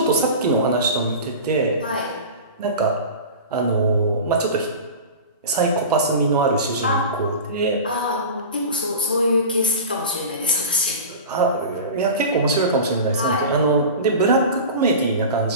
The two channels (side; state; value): both; inverted; correlation -0.32